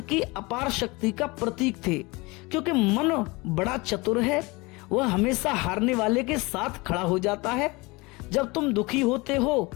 की अपार शक्ति का प्रतीक थे। क्योंकि मन बड़ा चतुर है, वह हमेशा हारने वाले के साथ खड़ा हो जाता है। जब तुम दुखी होते हो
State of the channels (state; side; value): quieter; right; 24.5 dB